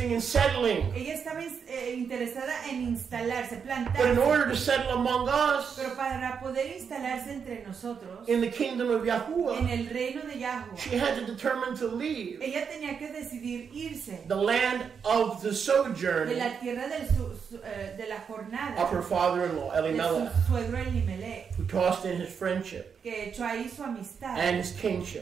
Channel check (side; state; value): left; quieter; 6.6 dB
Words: in settling. Ella estaba interesada en instalarse, But in plantarse. order to settle among us, Pero para poder instalarse entre nosotros, in the kingdom of en Yahuwah, el reino de Yahuwah, she had to determine to leave ella tenía que decidir irse the land of the de sojourn la tierra de la jornada of her father-in-law, de Elimelech, su suegro Elimelech, who tossed in his friendship que echó ahí su amistad and his